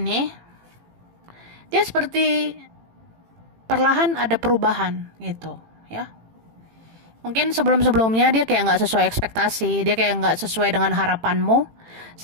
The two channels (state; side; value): late; left; 18 ms